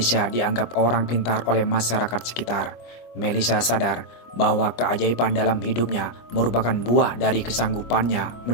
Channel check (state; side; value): late; right; 25 ms